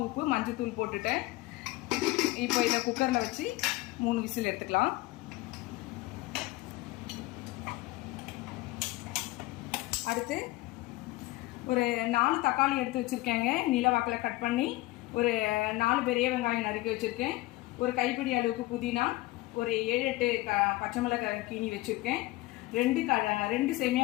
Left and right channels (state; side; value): quieter; right; 19.3 dB